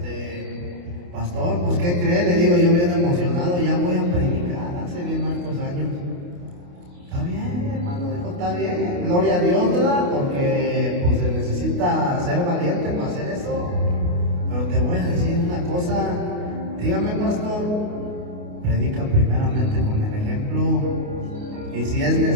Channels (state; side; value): late; left; 28 ms